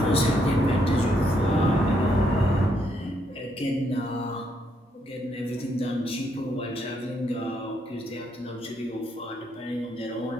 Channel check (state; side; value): normal; both; correlation 0.75